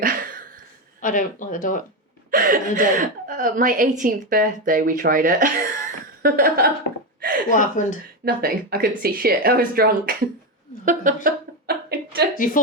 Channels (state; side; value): normal; both; correlation 0.11